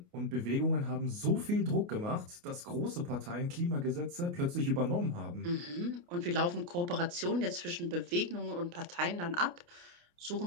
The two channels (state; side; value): late; left; 29 ms